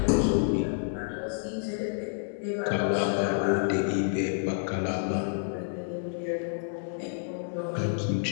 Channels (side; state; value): right; silent; digital silence